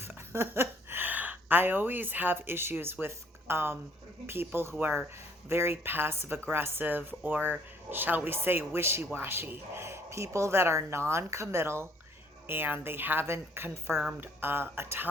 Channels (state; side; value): normal; both; correlation 0.62